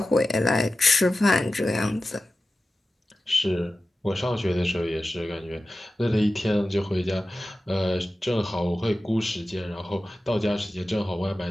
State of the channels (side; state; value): both; normal; correlation 0.94